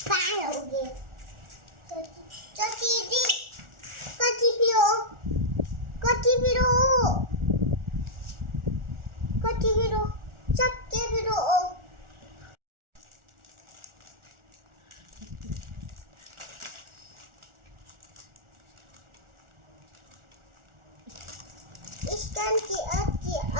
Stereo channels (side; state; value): left; late; 1.4 ms